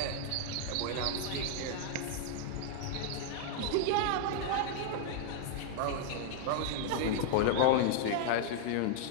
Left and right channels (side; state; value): both; different; correlation 0.00